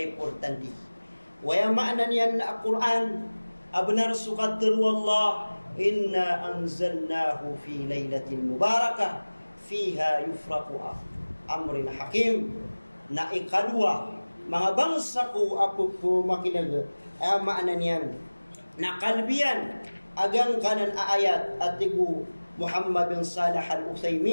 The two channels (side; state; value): both; inverted; correlation -1.00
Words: importanti. Waya maanan yan na Quran, abnar sukatir wallah, inna anzalnahu fi laylatin mubarakah, fiha yufraku amrin hakim, na ikadua, mga bangsa ko apo po makinaga, ay maanan yan, na kalbiyan, agang kanan ayat at tigu Muhammad bin Salih